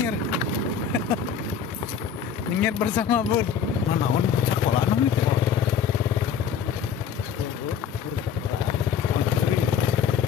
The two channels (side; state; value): right; quieter; 7.3 dB